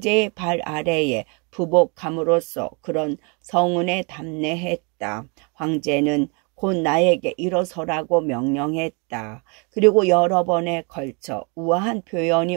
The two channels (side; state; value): left; quieter; 33.7 dB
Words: 발 아래에 부복함으로써 그런 성은에 담례했다. 황제는 곧 나에게 일어서라고 명령했다. 그리고 여러 번에 걸쳐 우아한 표현이